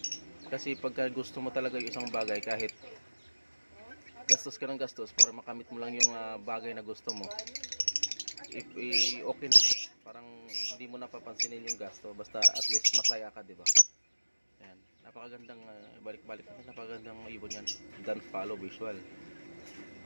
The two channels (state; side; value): inverted; both; correlation -1.00